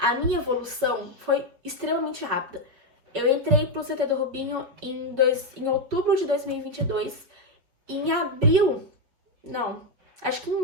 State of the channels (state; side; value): late; left; 5.5 ms